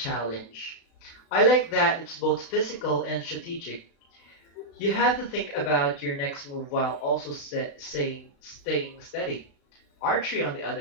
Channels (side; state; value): right; late; 36 ms